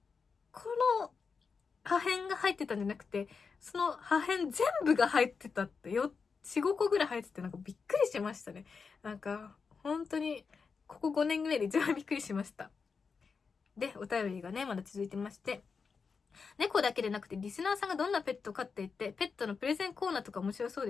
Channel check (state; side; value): quieter; right; 5.3 dB